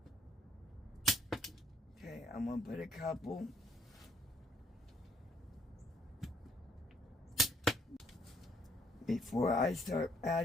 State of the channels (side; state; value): both; normal; correlation 0.66